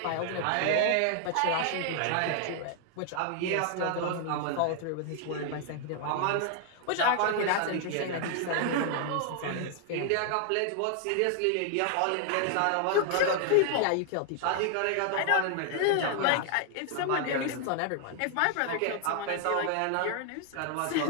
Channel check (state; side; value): different; both; correlation 0.00